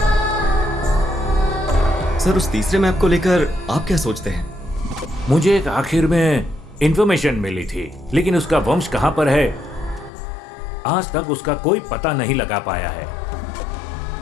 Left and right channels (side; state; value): right; drops out; at 10.1 s